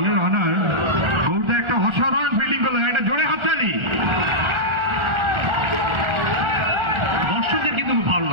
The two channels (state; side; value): late; left; 1.4 ms